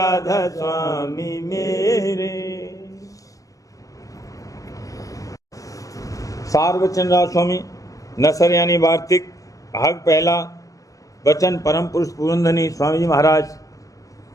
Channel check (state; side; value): late; right; 0.17 ms